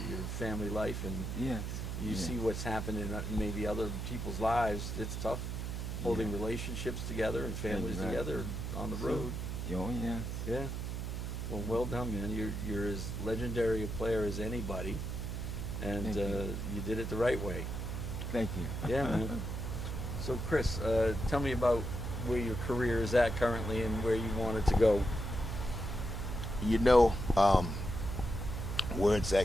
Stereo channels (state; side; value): noise; right; hum, 4 dB below the sound